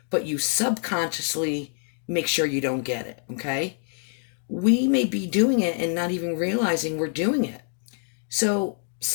but you subconsciously make sure you don't get it, okay? We may be doing it and not even realizing we're doing it. So,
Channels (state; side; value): silent; right; 61 dB below the other